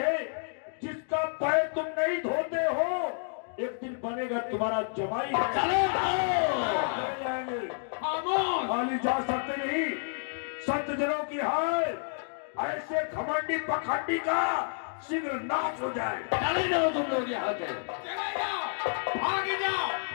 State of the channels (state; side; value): silent; right; digital silence